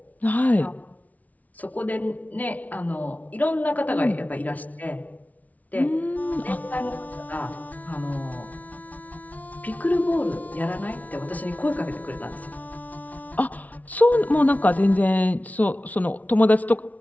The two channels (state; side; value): late; right; 0.072 ms